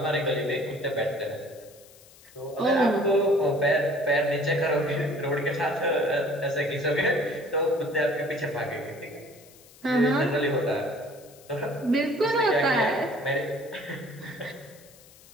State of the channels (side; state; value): left; noise; hiss, 24 dB below the sound